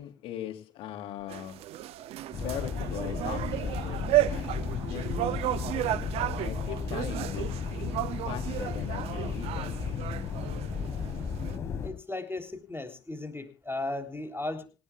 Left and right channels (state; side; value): normal; both; correlation 0.39